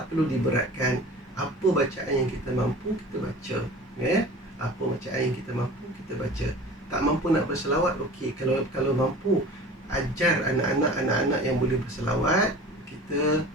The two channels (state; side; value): normal; both; correlation 0.40